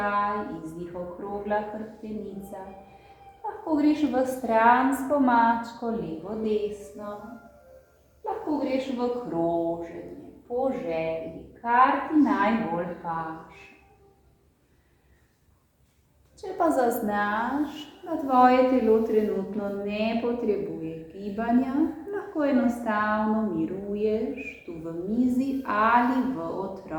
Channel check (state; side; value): identical; both; correlation 1.00